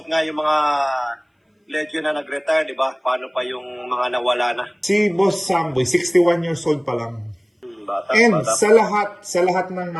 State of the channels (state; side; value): identical; both; correlation 1.00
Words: nga yung mga legend na nag-retire, di ba? Paano pa yung mga nawala na? Si Boss Samboy, 61 years old pa lang. Bata. Sa lahat ng